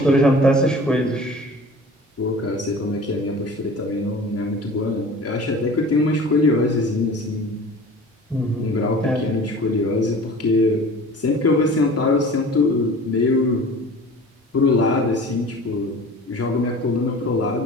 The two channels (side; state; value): both; normal; correlation 0.42